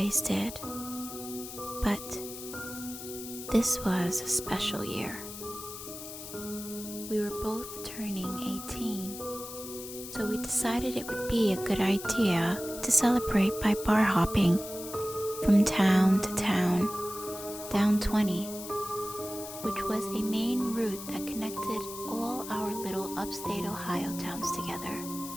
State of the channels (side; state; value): left; noise; hiss, 11 dB below the sound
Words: did. But this was a special year. We were both turning 18, so we decided it would be a good idea to celebrate by bar hopping from town to town, down 20, which was a main route that connected all our little upstate Ohio towns together.